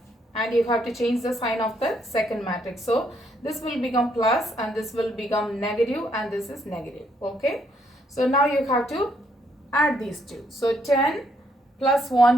and you have to change the sign of the second matrix. So this will become plus, and this will become negative, and this is negative. Okay, so now you have to add these two. So 10 plus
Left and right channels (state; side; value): normal; both; correlation 0.72